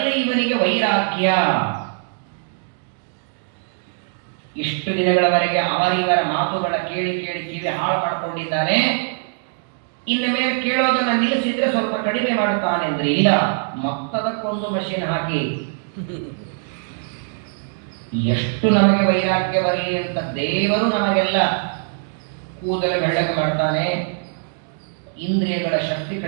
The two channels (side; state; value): left; silent; 62 dB below the other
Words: ಇವನಿಗೆ ವೈರಾಗ್ಯ. ಇಷ್ಟು ದಿನಗಳವರೆಗೆ ಅವರಿವರ ಮಾತುಗಳ ಕೇಳಿ ಕೇಳಿ ಕಿವಿ ಹಾಳು ಮಾಡಿಕೊಂಡಿದ್ದಾನೆ. ಇನ್ನು ಮೇಲೆ ಕೇಳೋದನ್ನ ನಿಲ್ಲಿಸಿದ್ರೆ ಸ್ವಲ್ಪ ಕಡಿಮೆ ಮಾಡುತ್ತಾನೆ ಅಂದ್ರೆ ಇಲ್ಲ, ಮತ್ತದಕ್ಕೊಂದು ಮಷೀನ್ ಹಾಕಿ ಎಷ್ಟು ನಮಗೆ ವೈರಾಗ್ಯ ಬರಲಿ ಅಂತ ದೇವರು ನಮಗೆಲ್ಲ ಕೂದಲು ಬೆಳ್ಳಗೆ ಮಾಡ್ತಾನೆ. ಇಂದ್ರಿಯಗಳ ಶಕ್ತಿ